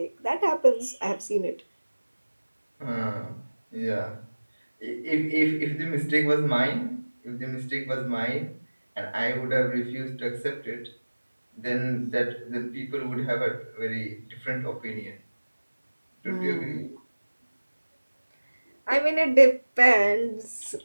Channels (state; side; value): inverted; both; correlation -1.00